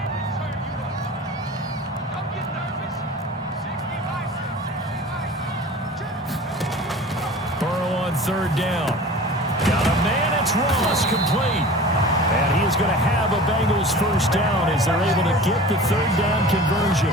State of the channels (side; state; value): both; normal; correlation 0.40